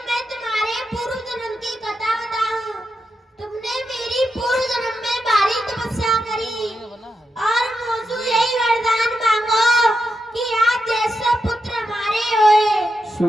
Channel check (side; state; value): both; normal; correlation 0.86